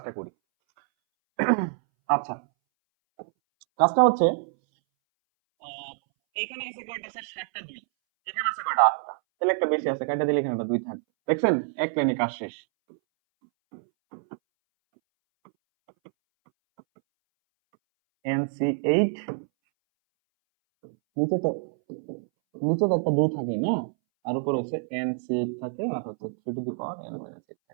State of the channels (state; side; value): silent; left; 61 dB below the other